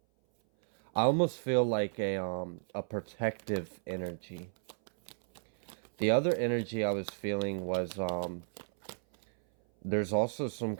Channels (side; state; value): left; silent; 56 dB below the other